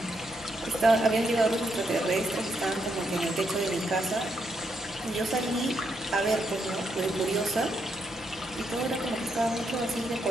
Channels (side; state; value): both; normal; correlation 0.79